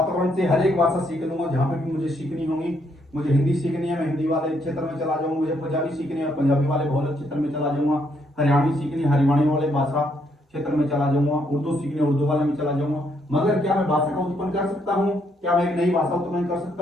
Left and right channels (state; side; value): normal; both; correlation 0.73